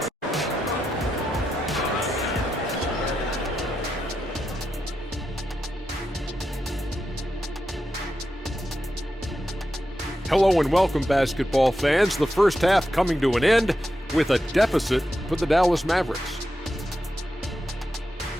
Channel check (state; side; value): normal; both; correlation 0.87